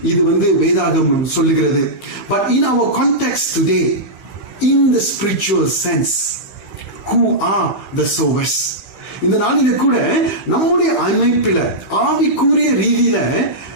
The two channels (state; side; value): late; right; 14 ms